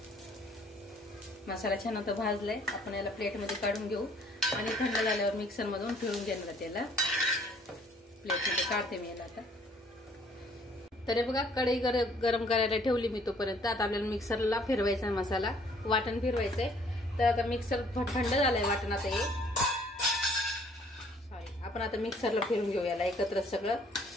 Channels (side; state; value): both; normal; correlation 0.60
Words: मसाला छान आता भाजलाय, आपण याला प्लेटमध्ये काढून घेऊ आणि थंड झाल्यावर मिक्सरमधून फिरून घेणार त्याला। प्लेटमध्ये काढते मी याला आता। तर बघा, कढई गरम करायला ठेवली मी तोपर्यंत। आता आपल्याला मिक्सरला फिरवायचा मसाला, वाटण फिरवायचंय। तर आता मिक्सर थंड झालंय वाटण, आता हे आपण आता मिक्सरला फिरून घेऊ याला एकत्र सगळं,